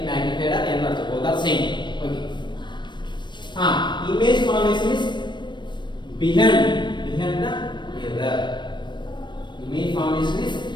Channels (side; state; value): right; late; 0.22 ms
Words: magnified or enlarged, both are same. Okay. Image formation is behind the mirror. Image formation is